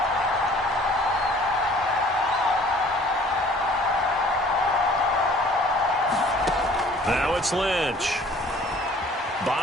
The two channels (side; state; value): both; normal; correlation 0.53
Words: Now it's Lynch.